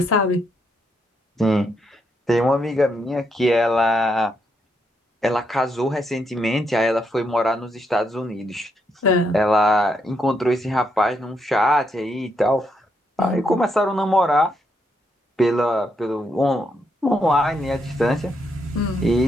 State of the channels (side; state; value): both; normal; correlation 0.78